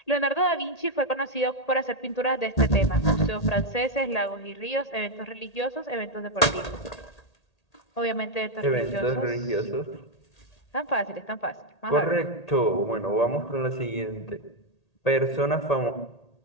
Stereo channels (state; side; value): late; right; 1.8 ms